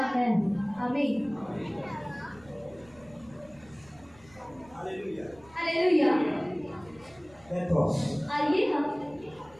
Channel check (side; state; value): right; noise; rumble, 25 dB below the sound